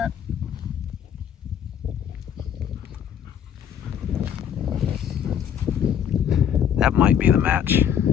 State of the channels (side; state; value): right; quieter; 9.0 dB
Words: might be the match